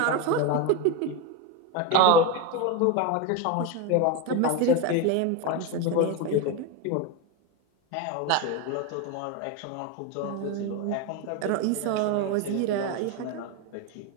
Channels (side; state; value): both; different; correlation 0.03